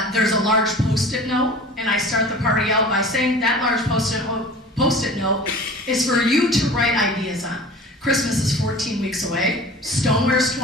there's a large Post-it note. And I start the party out by saying that large Post-it note is for you to write ideas on. Christmas is 14 weeks away. Stoneware's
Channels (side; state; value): both; normal; correlation 0.41